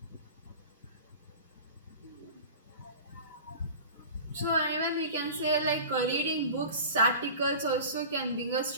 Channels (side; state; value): both; inverted; correlation -0.37